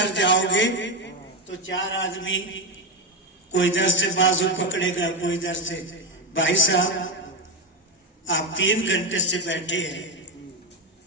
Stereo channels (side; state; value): both; normal; correlation 0.10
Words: जाओगे तो 4 आदमी, कोई इधर से बाजू पकड़ेगा, कोई इधर से। भाई साहब, आप 3 घंटे से बैठे हैं,